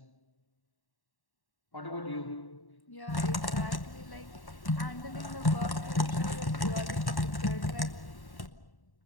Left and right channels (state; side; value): late; right; 1.1 ms